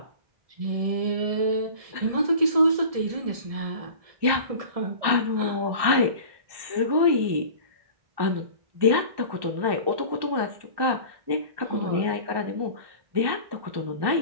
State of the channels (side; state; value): left; late; 1.2 ms